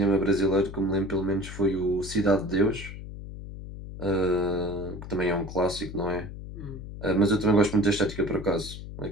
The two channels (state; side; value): noise; left; hum, 11 dB below the sound